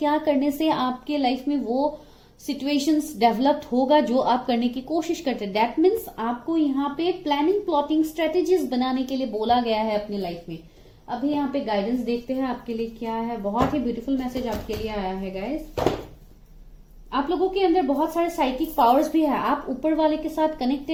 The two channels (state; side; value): identical; both; correlation 1.00